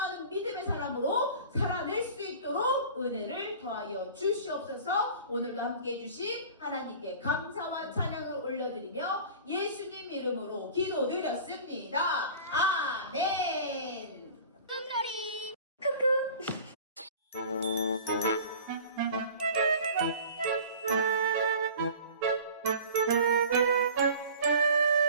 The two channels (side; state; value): both; inverted; correlation -0.42